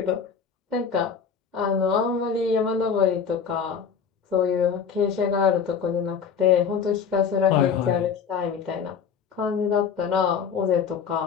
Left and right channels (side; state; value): right; quieter; 6.7 dB